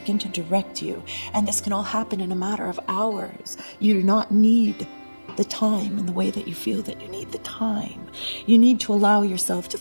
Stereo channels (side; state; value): both; inverted; correlation -1.00